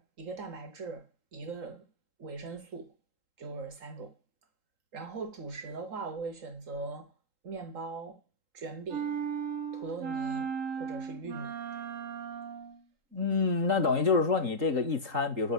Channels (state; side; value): late; left; 3.8 ms